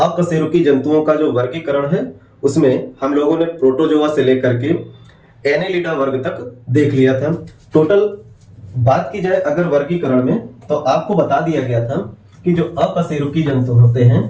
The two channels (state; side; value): identical; both; correlation 1.00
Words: जंतुओं का जो वर्गीकरण है उसमें हम लोगों ने प्रोटोजोआ से लेकर के एनेलिडा वर्ग तक देख लिया था। टोटल बात की जाए अगर वर्गीकरण में तो आपको बता दिया गया था कि जो अकशेरुकी जंतु होते हैं,